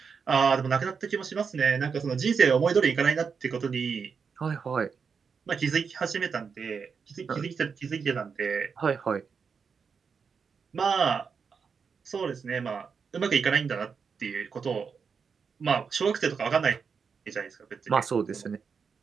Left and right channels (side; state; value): left; quieter; 5.9 dB